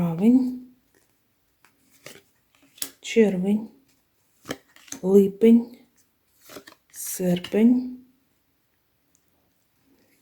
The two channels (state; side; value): identical; both; correlation 1.00